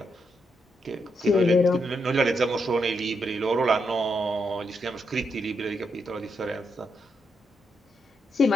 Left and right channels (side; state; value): both; normal; correlation 0.81